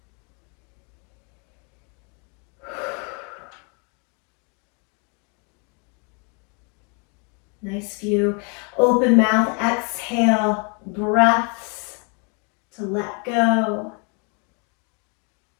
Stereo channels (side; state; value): right; quieter; 35.3 dB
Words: nice few open mouth exhale breaths to let go,